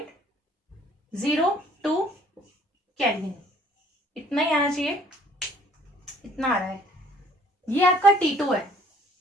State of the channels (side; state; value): both; normal; correlation 0.58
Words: केल्विन, इतना ही आना चाहिए, इतना आ रहा है, ये आपका T2 है,